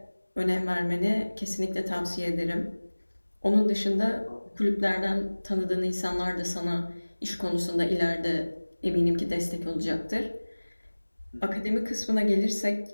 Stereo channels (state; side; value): inverted; both; correlation -1.00